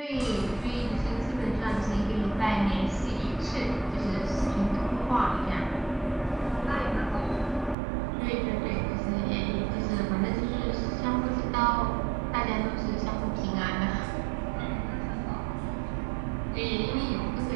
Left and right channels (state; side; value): drops out; left; at 7.8 s